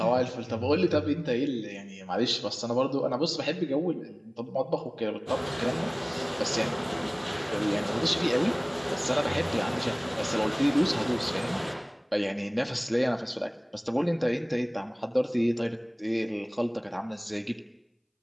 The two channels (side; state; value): both; identical; correlation 1.00